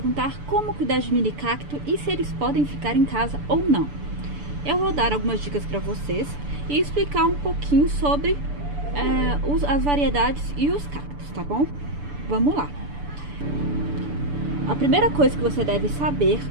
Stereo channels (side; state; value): left; late; 6.9 ms